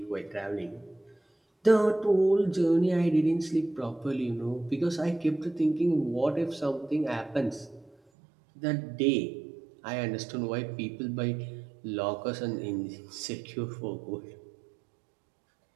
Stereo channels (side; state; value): left; drops out; at 8.0 s